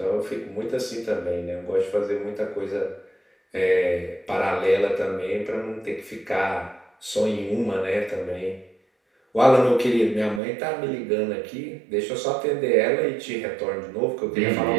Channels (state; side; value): drops out; left; at 10.4 s